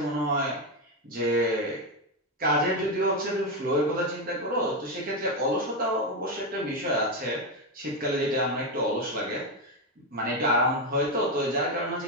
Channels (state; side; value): normal; both; correlation 0.09